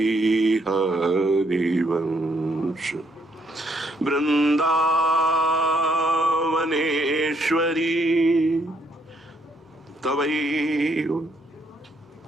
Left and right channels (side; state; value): both; normal; correlation 0.71